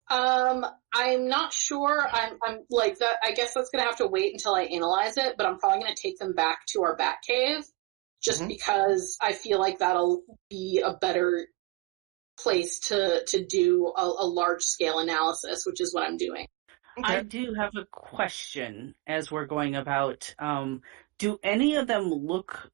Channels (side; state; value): left; quieter; 22.9 dB